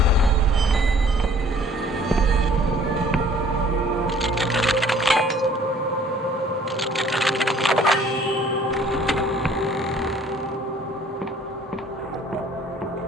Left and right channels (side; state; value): both; normal; correlation 0.55